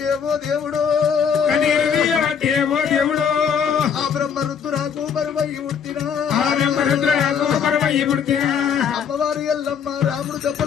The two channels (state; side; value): quieter; right; 7.2 dB